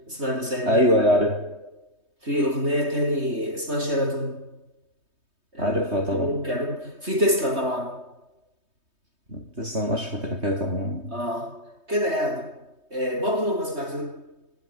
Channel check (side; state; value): left; late; 3.2 ms